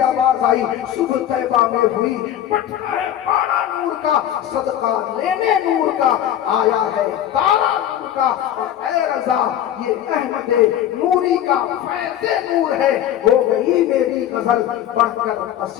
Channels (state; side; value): quieter; right; 11.3 dB